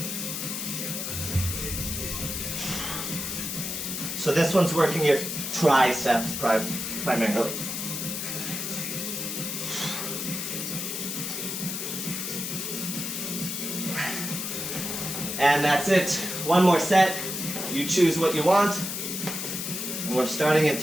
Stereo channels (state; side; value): noise; left; hiss, 4 dB below the sound